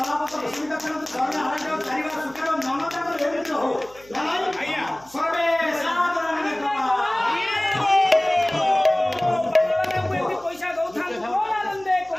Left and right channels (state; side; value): noise; right; hum, 25 dB below the sound